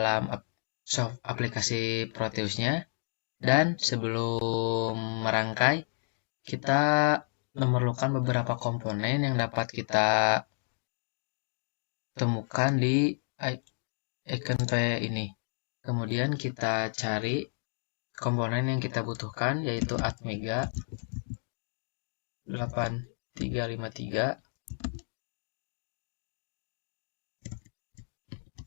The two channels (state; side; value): silent; right; digital silence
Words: aplikasi Proteusnya, dan sebelum merangkai kita memerlukan beberapa komponen yang dapat kita temukan di icon ini. Kemudian kita cari komponen yang kita butuhkan, yaitu Atmega 8353.